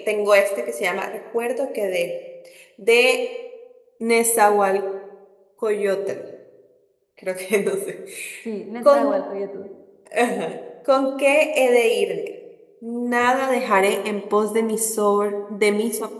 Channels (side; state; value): both; identical; correlation 1.00